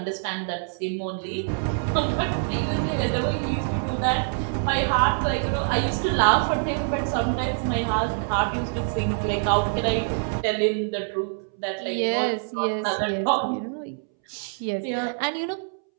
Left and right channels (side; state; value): left; silent; 62 dB below the other